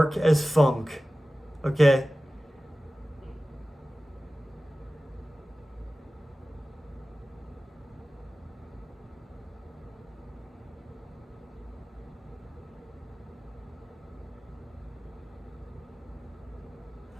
as funk. Okay?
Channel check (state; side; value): normal; both; correlation 0.96